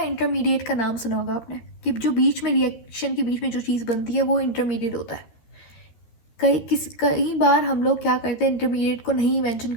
का नाम सुना होगा आपने, कि जो बीच में रिएक्शन के बीच में जो चीज़ बनती है वो इंटरमीडिएट होता है। कई बार हम लोग क्या करते हैं, इंटरमीडिएट को नहीं मेंशन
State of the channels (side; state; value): right; late; 13 ms